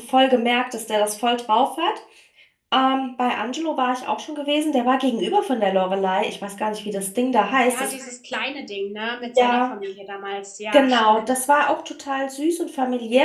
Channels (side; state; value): both; identical; correlation 1.00